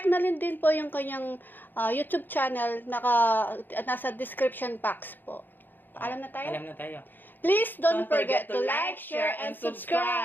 na din po yung kanyang YouTube channel, nasa description box po. Alam na tayo? Alam na tayo. Please don't forget to like, share, and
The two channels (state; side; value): late; right; 0.091 ms